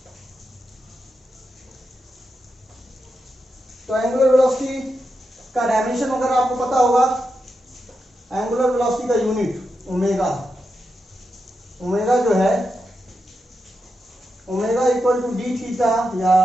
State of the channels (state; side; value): normal; both; correlation 0.87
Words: तो एंगुलर वेलोसिटी का डायमेंशन अगर आपको पता होगा, एंगुलर वेलोसिटी का यूनिट ओमेगा। ओमेगा जो है, omega equal to d theta या